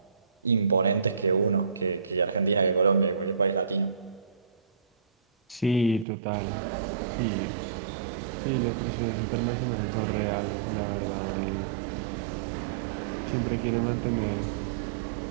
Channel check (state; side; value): drops out; left; at 6.1 s